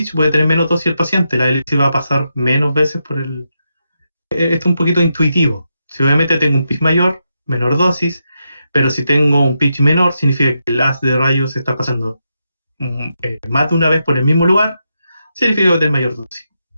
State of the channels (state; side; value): inverted; both; correlation -0.85